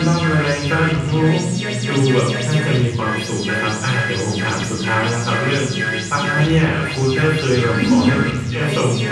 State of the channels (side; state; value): both; identical; correlation 1.00